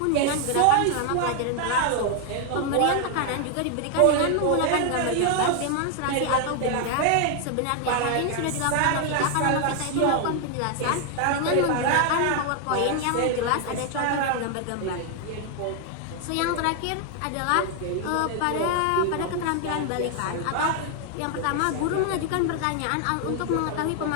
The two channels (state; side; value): different; both; correlation 0.00